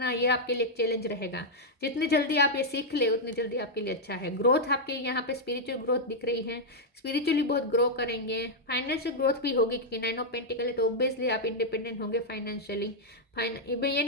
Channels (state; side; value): normal; both; correlation -0.03